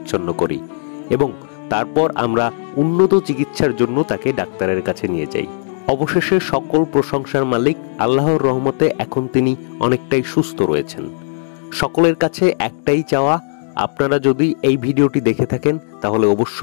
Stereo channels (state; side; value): silent; right; digital silence